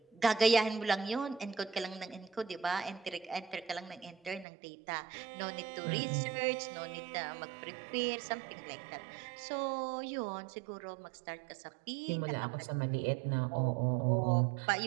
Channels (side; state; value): left; drops out; at 4.5 s